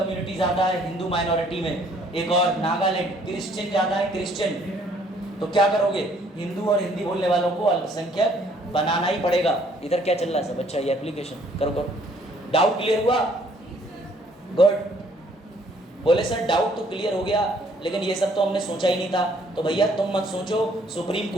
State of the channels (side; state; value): both; normal; correlation 0.62